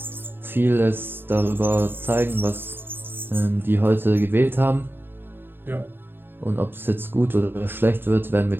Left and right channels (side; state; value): left; late; 0.10 ms